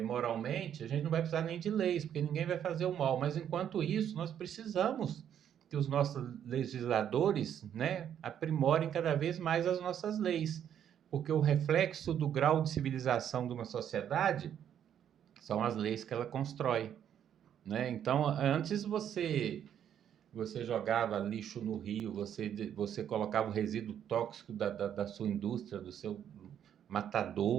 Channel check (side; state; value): left; quieter; 9.5 dB